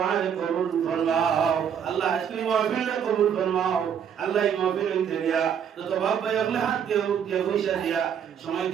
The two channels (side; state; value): left; quieter; 8.2 dB